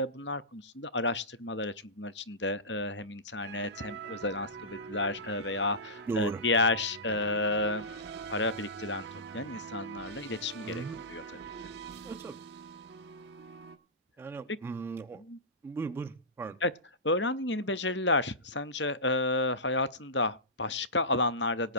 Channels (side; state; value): both; normal; correlation -0.19